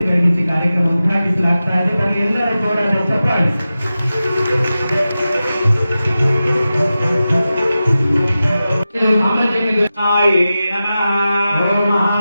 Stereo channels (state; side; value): inverted; both; correlation -0.93